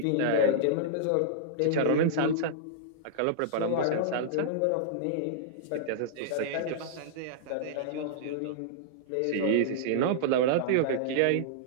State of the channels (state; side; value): different; both; correlation -0.02